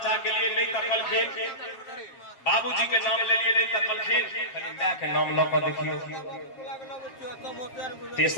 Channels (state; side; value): late; right; 7.4 ms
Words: के लिए नहीं तकलखिन, बाबूजी के नाम ले लिए नहीं तकलखिन, खाली मां के नाम ल के देखियो।